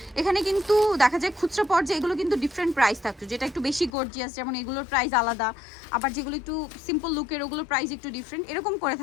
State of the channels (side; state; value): right; drops out; at 3.9 s